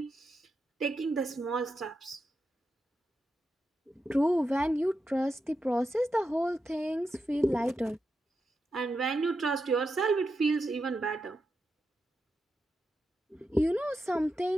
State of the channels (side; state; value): both; normal; correlation 0.87